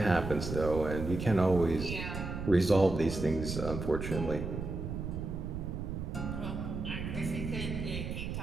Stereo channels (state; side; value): noise; right; rumble, 5 dB below the sound